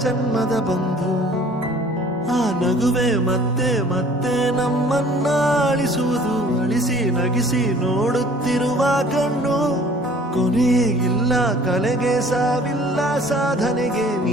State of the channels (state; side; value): normal; both; correlation 0.52